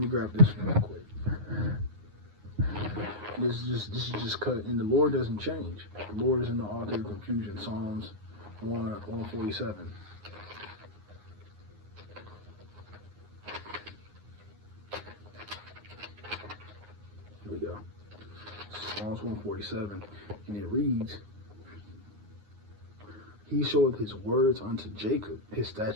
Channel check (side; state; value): left; late; 9.6 ms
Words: grab this real quick. This is just cut, and the Lord doesn't change. The Lord is in the author of confusion. Psalms 147. Here we go. Psalms 147, and it reads, He showeth his words unto Jacob, his